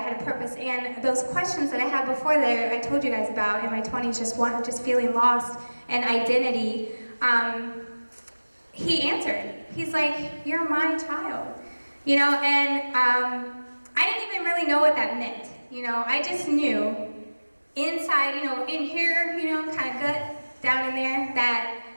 a purpose. And those questions that I had before that I told you guys about in my 20s, just feeling lost and identity, he answered. He's like, "You're my child." You know, and I didn't even really know what that meant. You know, I just knew inside, you know, in here, you know, kind of gut down in there,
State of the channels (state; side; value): inverted; both; correlation -1.00